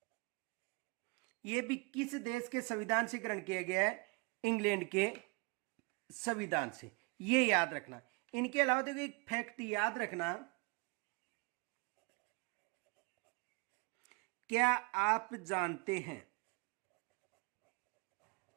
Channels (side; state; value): left; quieter; 29.4 dB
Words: यह भी किस देश के संविधान से ग्रहण किया गया है? इंग्लैंड के संविधान से। ये याद रखना। इनके अलावा देखो एक फैक्ट याद रखना, क्या आप जानते हैं,